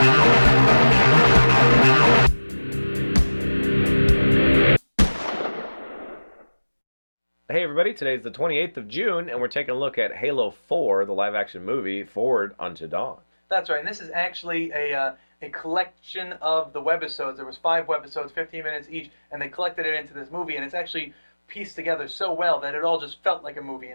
Hey everybody, today's the 28th of June, and we're taking a look at Halo 4, the live-action movie, Forward Unto Dawn. That's right, and this is actually a collection of the webisodes. There was 5 webisodes, 15 minutes each, and they collected it into this movie, and it's actually pieced together so well that it all just felt like a movie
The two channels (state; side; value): inverted; both; correlation -1.00